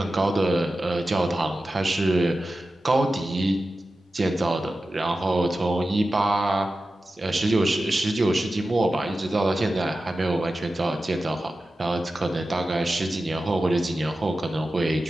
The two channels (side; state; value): both; normal; correlation 0.93